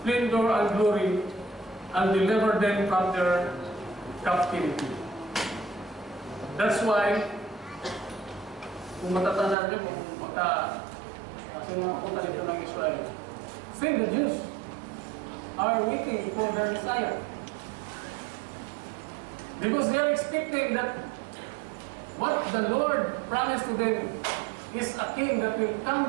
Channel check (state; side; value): drops out; left; at 9.6 s